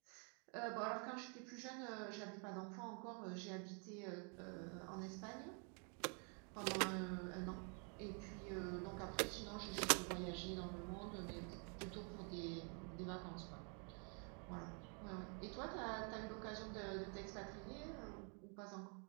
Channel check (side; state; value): left; quieter; 38.4 dB